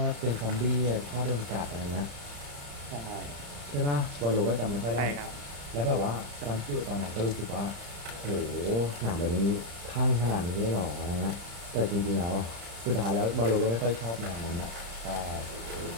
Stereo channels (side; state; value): left; late; 35 ms